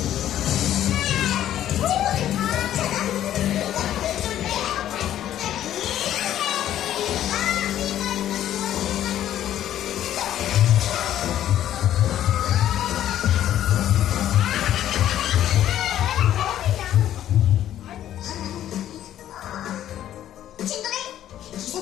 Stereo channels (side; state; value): right; quieter; 11.8 dB